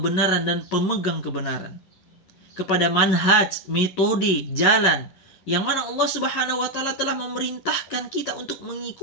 dan pemegang kebenaran, kepada manhaj, metode, jalan yang mana Allah Subhanahu wa taala telah memerintahkan kita untuk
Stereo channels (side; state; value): right; late; 11 ms